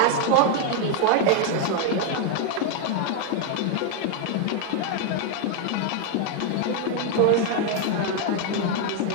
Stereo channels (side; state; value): both; different; correlation 0.01